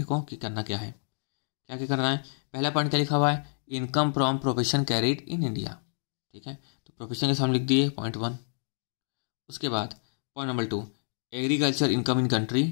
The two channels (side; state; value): right; silent; digital silence